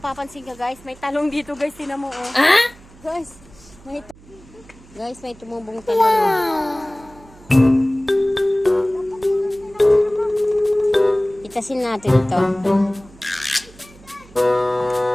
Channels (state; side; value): noise; right; hum, 24 dB below the sound